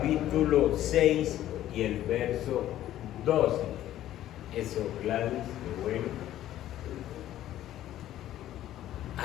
6 y el verso 12. Eso, Gladys, qué bueno.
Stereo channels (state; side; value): quieter; right; 13.0 dB